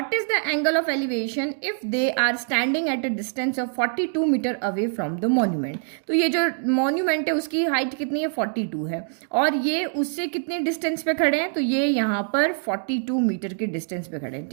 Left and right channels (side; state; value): left; silent; 62 dB below the other